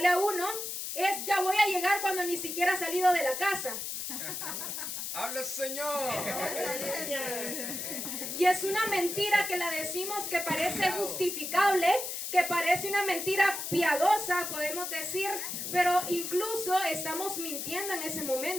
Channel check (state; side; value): noise; left; hiss, 5 dB below the sound